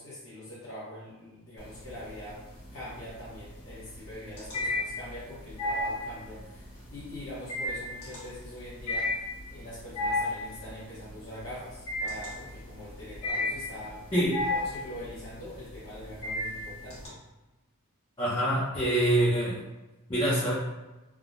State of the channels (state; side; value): normal; both; correlation 0.31